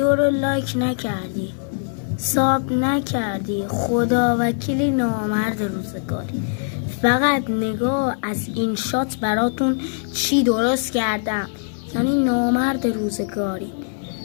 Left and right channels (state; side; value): silent; right; digital silence